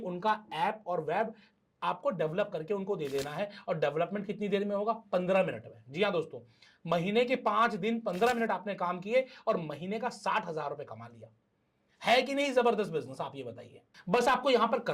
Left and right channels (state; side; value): identical; both; correlation 1.00